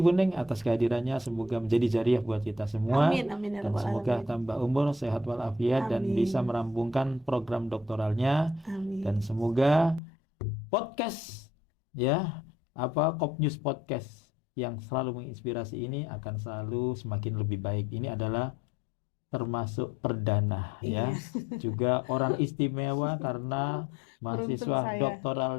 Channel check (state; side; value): drops out; right; at 10.0 s